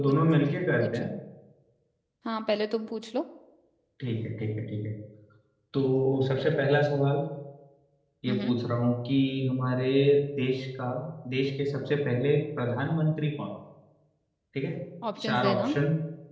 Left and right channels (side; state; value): both; identical; correlation 1.00